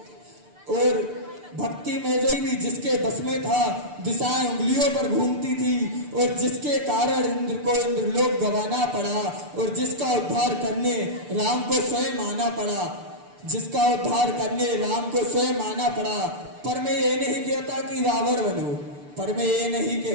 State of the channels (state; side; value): late; left; 6.8 ms